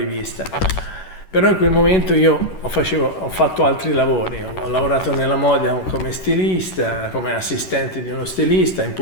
Però in quel momento io ho fatto altri lavori, ho lavorato nella moda come stilista, come assistente di uno stilista, in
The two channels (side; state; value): right; late; 11 ms